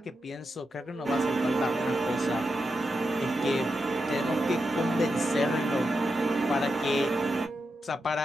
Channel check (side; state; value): both; normal; correlation 0.87